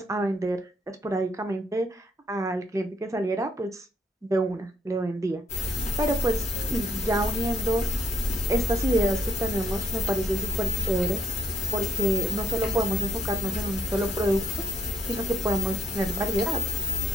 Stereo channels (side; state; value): both; normal; correlation 0.71